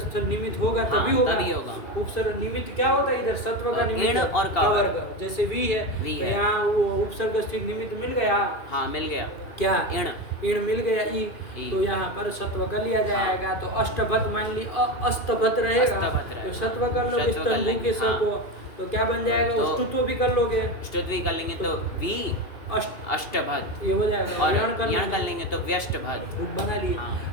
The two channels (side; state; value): right; late; 2.7 ms